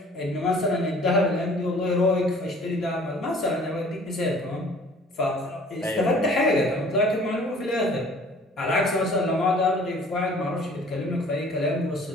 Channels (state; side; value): normal; both; correlation 0.52